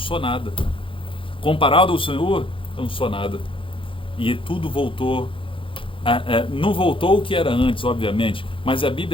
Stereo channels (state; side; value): late; right; 0.25 ms